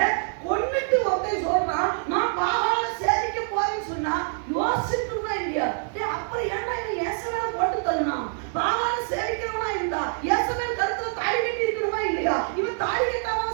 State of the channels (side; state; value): left; silent; 61 dB below the other